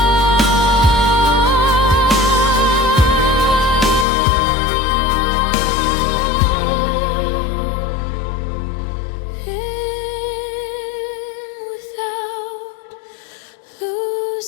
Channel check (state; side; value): drops out; right; at 4.0 s